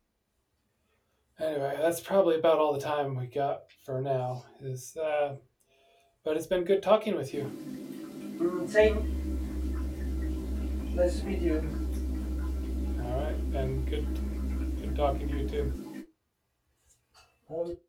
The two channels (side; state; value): both; identical; correlation 1.00